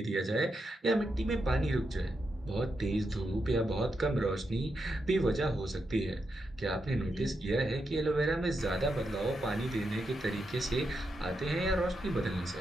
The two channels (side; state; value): both; normal; correlation 0.84